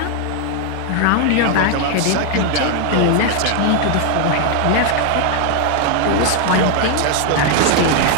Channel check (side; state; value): both; different; correlation 0.00